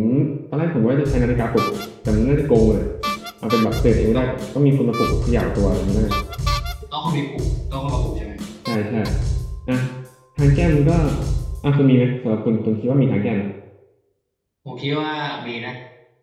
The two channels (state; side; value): identical; both; correlation 1.00